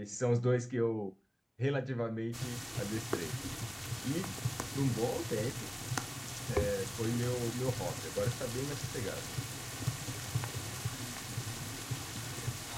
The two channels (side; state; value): both; identical; correlation 1.00